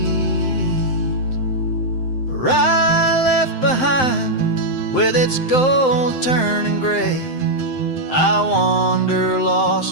Rye left behind with its gold turning gray. I wander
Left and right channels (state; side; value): late; right; 7.7 ms